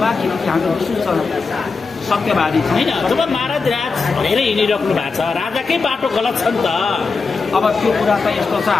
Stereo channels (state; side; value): quieter; right; 4.5 dB